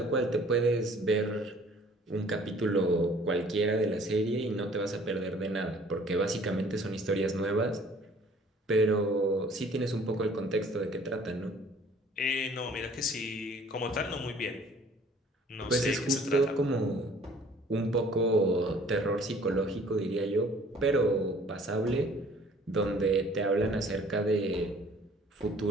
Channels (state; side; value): normal; both; correlation 0.54